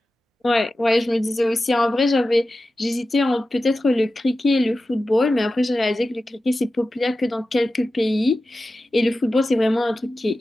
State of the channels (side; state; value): both; normal; correlation 0.94